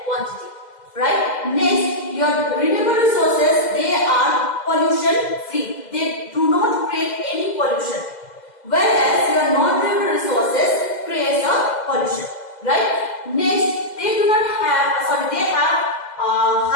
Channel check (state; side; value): late; right; 2.0 ms